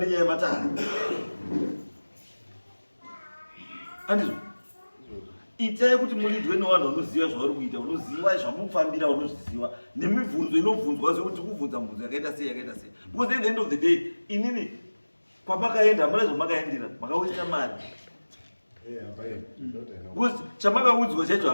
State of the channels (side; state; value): both; inverted; correlation -1.00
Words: yematare. Andizvo, itai kuti mulidwe nevanhu vanoziva zvavari kuita, unoziva zvamufambira, unozviziva nemibvunzo inobvunzwa zvekuti kubvunza mibvunzo yakaita sei. Because at the end of the day inini kwamakaenda hamuna zvamakaendera, makawaita mari. Because chamakaudzwa chacho